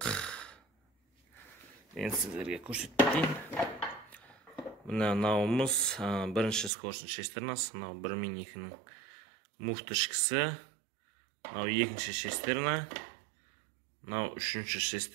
Енді сіздерге көрсетіп кетейін. Мынауымыз бірінші скоростың шестернасы, мынау 1 мен 2-нің муфты ішкісі, мынау екінші шестерна, Мынау 3-ші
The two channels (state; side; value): drops out; left; at 6.7 s